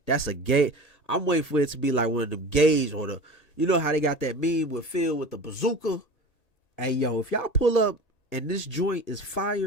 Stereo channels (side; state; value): right; late; 1.8 ms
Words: gay. I'm waiting for it to be like one of them gays or the, you know how they got that meme with Phil with the bazooka. Hey yo, if y'all pull up and this joint is